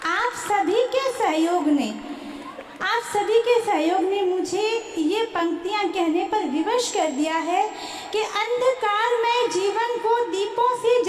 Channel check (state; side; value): identical; both; correlation 1.00